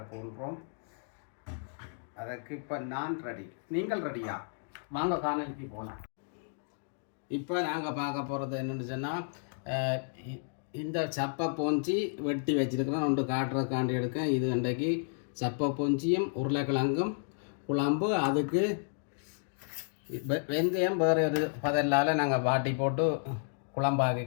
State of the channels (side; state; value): right; silent; digital silence